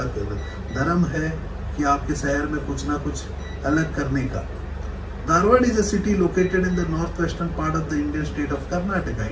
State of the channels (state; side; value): identical; both; correlation 1.00